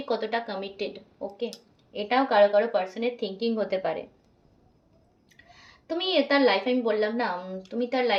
কতটা কমিটেড, ওকে। এটাও কারো কারো পার্সনের থিঙ্কিং হতে পারে। তুমি তার লাইফে, আমি বললাম না তুমি তার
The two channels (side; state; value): both; identical; correlation 1.00